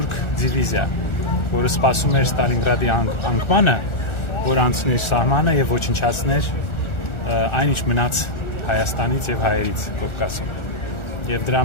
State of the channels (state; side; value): late; right; 1.4 ms